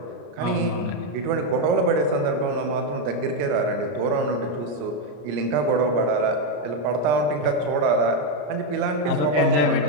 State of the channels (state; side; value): late; left; 33 ms